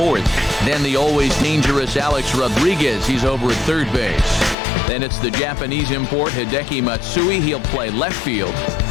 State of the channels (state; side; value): drops out; right; at 4.5 s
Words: Then the always dangerous Alex Rodriguez. He's over at third base. Then it's the Japanese import, Hideki Matsui. He'll play left field.